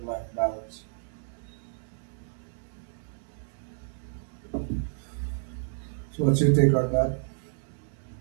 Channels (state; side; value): silent; left; digital silence